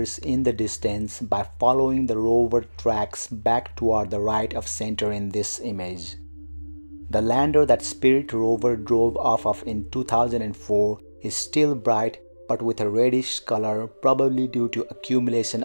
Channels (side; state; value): both; inverted; correlation -1.00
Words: in the distance by following the rover tracks back toward the right of center in this image. The lander that Spirit rover drove off of in 2004 is still bright but with a reddish color, probably due to accumulation